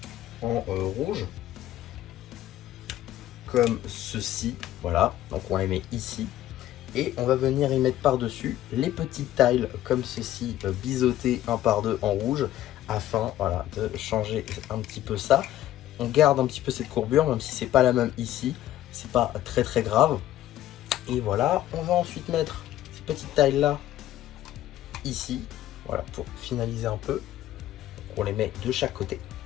en rouge comme ceci, voilà, donc on les met ici. Et on va venir y mettre par-dessus les petites tiles comme ceci, biseautés 1 par 2 en rouge, afin voilà, de changer un petit peu ça. On garde un petit peu cette courbure, même si c'est pas la même ici, c'est pas très grave. Et voilà, on va ensuite mettre ces petites tiles là, ici, voilà, pour finaliser un peu. Donc on les met de chaque côté.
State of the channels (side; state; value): right; quieter; 13.2 dB